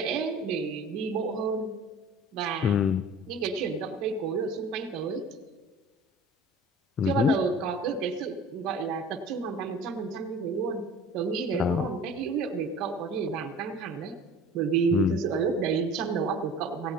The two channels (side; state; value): both; normal; correlation 0.43